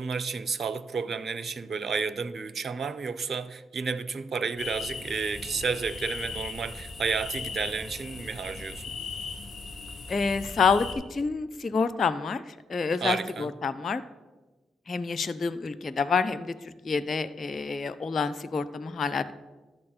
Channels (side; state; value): both; normal; correlation 0.76